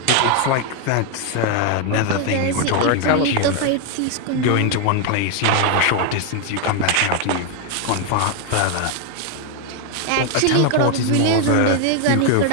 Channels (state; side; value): different; both; correlation 0.01